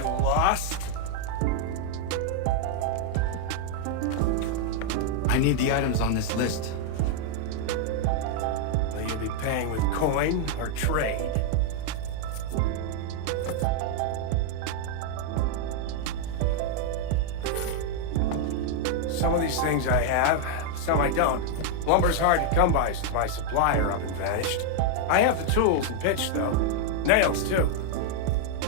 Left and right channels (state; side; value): different; both; correlation 0.00